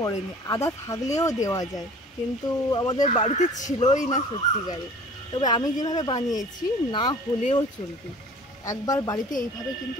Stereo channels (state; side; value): normal; both; correlation 0.46